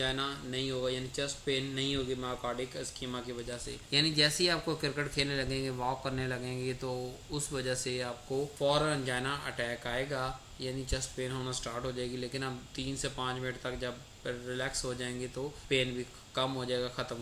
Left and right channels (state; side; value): identical; both; correlation 1.00